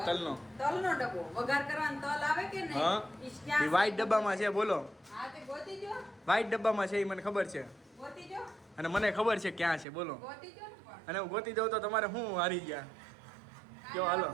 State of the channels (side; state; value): left; drops out; at 9.9 s